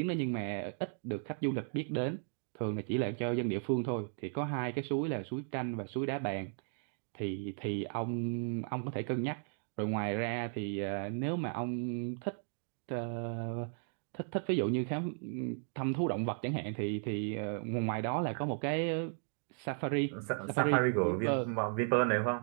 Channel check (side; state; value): left; silent; 54 dB below the other